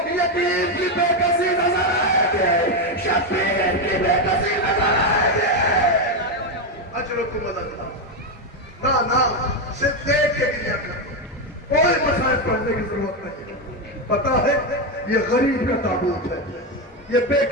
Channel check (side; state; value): both; normal; correlation 0.08